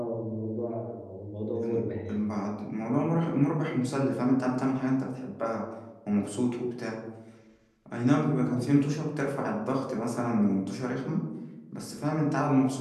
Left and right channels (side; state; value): both; identical; correlation 1.00